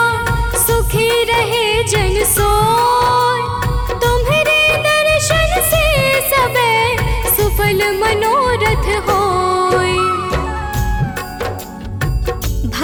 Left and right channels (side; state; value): both; identical; correlation 1.00